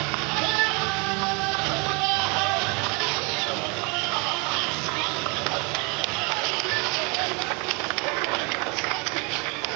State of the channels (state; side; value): quieter; left; 31.2 dB